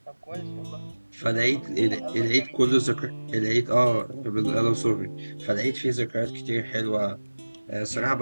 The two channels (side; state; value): both; inverted; correlation -1.00